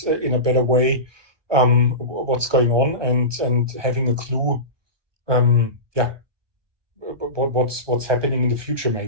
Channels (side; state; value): left; late; 1.2 ms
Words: in a better way what's going on, and having a clue, what's happening in the future,